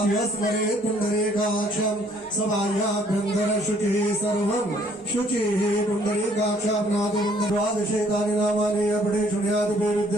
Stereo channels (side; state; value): both; normal; correlation 0.62